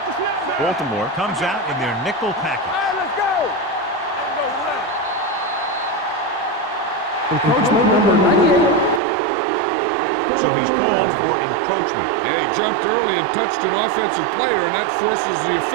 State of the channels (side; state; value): left; drops out; at 9.0 s